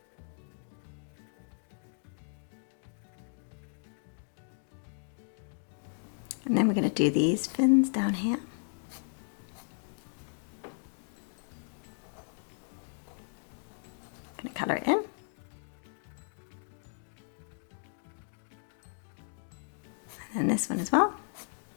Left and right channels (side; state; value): right; silent; digital silence